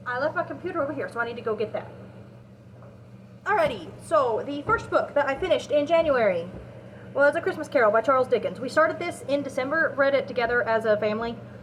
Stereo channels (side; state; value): both; identical; correlation 1.00